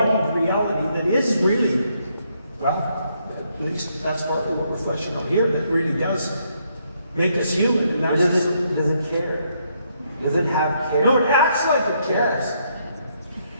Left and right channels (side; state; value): both; inverted; correlation -0.74